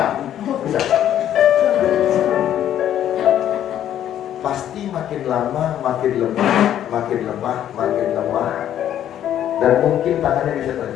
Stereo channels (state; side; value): quieter; right; 10.9 dB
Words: Bisa. Pasti makin lama makin lemah, dan mungkin tangannya bisa